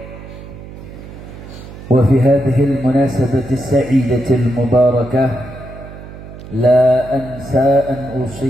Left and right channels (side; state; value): right; noise; hum, 14 dB below the sound